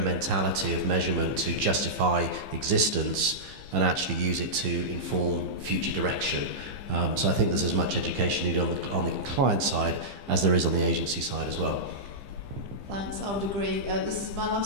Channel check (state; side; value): late; left; 15 ms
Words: of measurement to justify existence and actually use it to inform future direction. So I think there's as much education needed on the client side as there is on the agency side as well. Thanks, I would agree. This is my